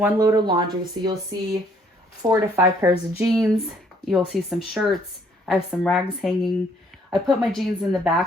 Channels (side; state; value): both; normal; correlation 0.64